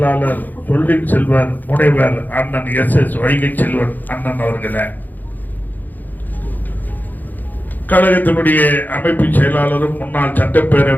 சொல்லின் செல்வர் முனைவர் அண்ணன் SS வைகை செல்வன் அண்ணன் அவர்களே, கழகத்தினுடைய அமைப்பு செயலாளரும் முன்னாள்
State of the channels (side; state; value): right; late; 0.085 ms